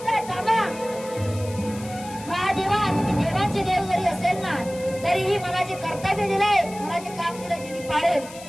थांबा महादेवा, तुम्ही देवांचे देव जरी असेल ना तरीही मला जे कर्तव्य दिलंय, मला जे काम दिलंय ते मी पाळेल.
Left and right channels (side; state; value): left; noise; hiss, 17 dB below the sound